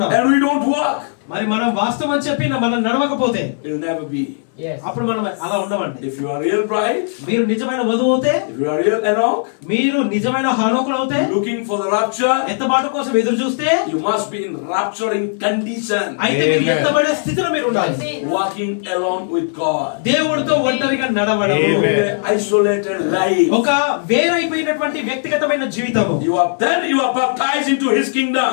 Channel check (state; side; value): silent; right; digital silence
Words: And we don't walk. మరి మనం వాస్తవం అని చెప్పి మనం నడవకపోతే It will never be. అప్పుడు మనం అలా ఉండమండి. If you are real bride, మీరు నిజమైన వధువు అవుతే, if you are real Enoch, మీరు నిజమైన హానోకులు అవుతే, looking for the rapture, ఎత్తబాటు కోసం ఎదురు చూస్తే, you must be in rapturing condition. అయితే మీరు ఎత్తబడే స్థితిలో మీరు ఉండాలి. Walking alone with God. దేవుడితో ఒంటరిగా నడవడం, Isolated life. ఒక వేరైపోయినటువంటి వ్యక్తిగతమైన జీవితము. You are baptized into His kingdom.